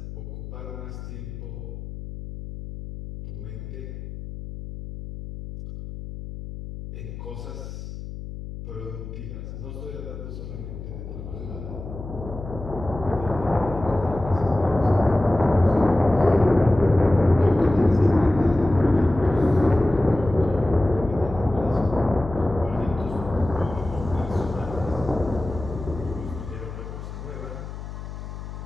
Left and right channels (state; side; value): noise; left; hum, 10 dB below the sound